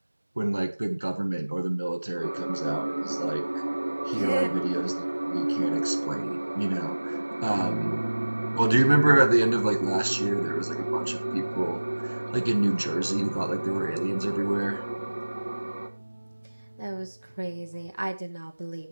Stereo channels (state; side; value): inverted; both; correlation -1.00